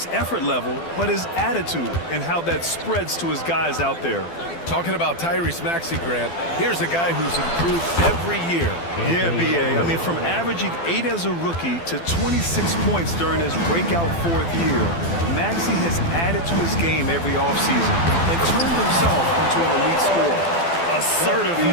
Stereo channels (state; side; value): late; right; 12 ms